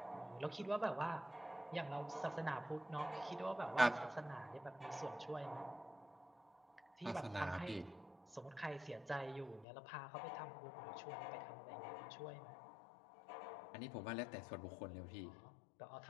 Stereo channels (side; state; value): right; drops out; at 9.7 s